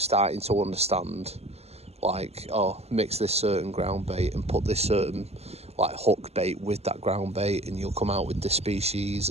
to understand, like, oh, mix this certain ground bait and put this certain like hook bait with that ground bait, and you'll come out with this species.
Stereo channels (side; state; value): left; late; 0.30 ms